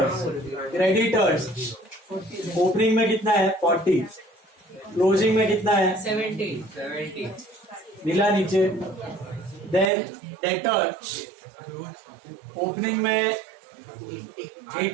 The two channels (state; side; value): drops out; left; at 9.9 s